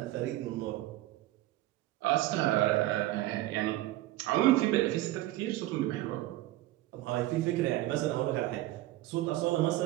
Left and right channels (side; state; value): left; quieter; 16.3 dB